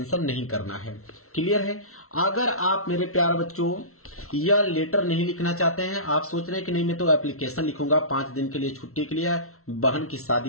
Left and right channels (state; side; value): late; right; 0.63 ms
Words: नहीं करना है। क्लियर है। अगर आप मेरे प्यारे बच्चों यह लेटर नहीं लिखना चाहते हैं, आप सोच रहे हैं कि नहीं मैं तो एप्लीकेशन लिखूंगा 5 दिन के लिए छुट्टी के लिए, बहन की